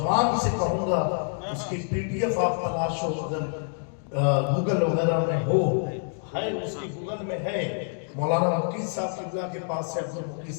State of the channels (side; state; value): right; silent; 60 dB below the other